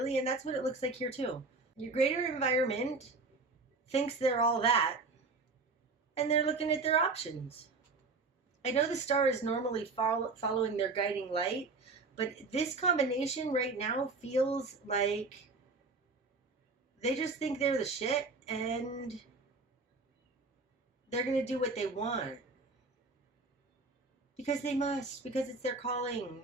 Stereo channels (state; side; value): quieter; left; 3.9 dB